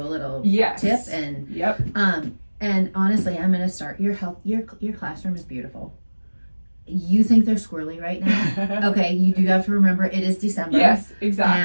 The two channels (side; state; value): both; inverted; correlation -1.00